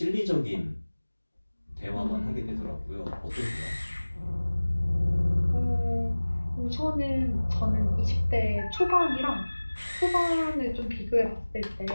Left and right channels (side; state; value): both; inverted; correlation -1.00